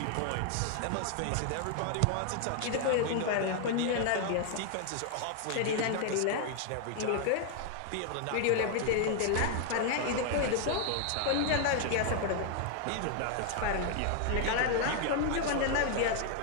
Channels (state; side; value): different; both; correlation 0.00